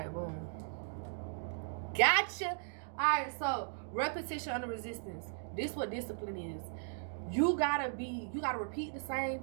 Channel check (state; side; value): silent; left; digital silence